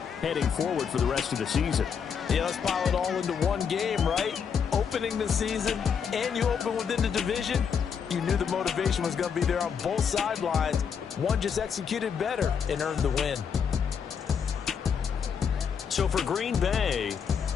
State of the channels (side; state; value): right; quieter; 6.9 dB